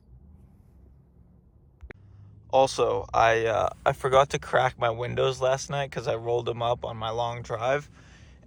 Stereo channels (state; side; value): identical; both; correlation 1.00